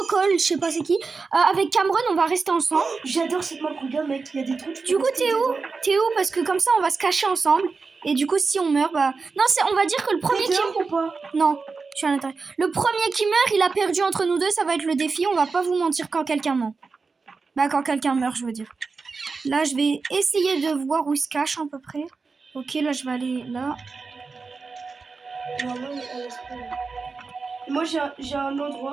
je sais pas c'est qui. Avec Cameron, on va rester ensemble. J'adore cette map, regarde, mec. Il y a des trucs. Du coup, t'es où? T'es où? Parce que comme ça, on va se cacher ensemble. Et du coup, si on meurt, bah... Non, on va dire que le premier qui... ou pas? Non. Je suis à l'intérieur. Le premier qui meurt, il a perdu entre nous deux. Ça va être le défi. On va pas vous mentir quand quelqu'un ment. Bah, quand quelqu'un meurt, je veux dire. Là, je vais essayer de voir où il se cache à peu près. Ok, là, je vais aller là. Normalement, elle laisse pas. Moi, j'ai un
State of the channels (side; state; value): left; quieter; 4.5 dB